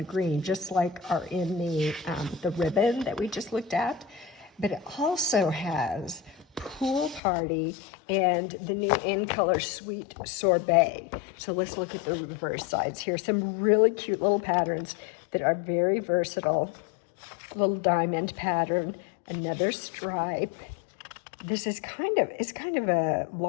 green, just like are in the ribbon that we just looked at, but it also has Pool Party and the new in color Sweet Sorbet. So let's look at the reverse sides here. Some really cute little patterns that are very versatile. Little diamond pattern, another stripe. This is kind of a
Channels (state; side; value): drops out; right; at 7.2 s